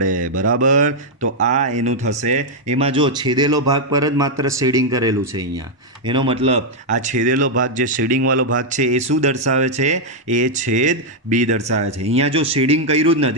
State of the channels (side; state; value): both; normal; correlation -0.02